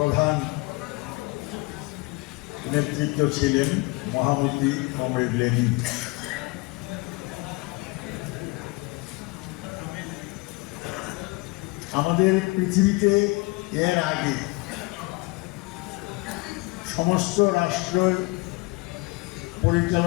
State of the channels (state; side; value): quieter; right; 25.6 dB